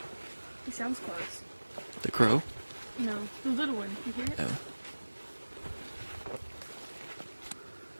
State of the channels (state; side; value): inverted; both; correlation -1.00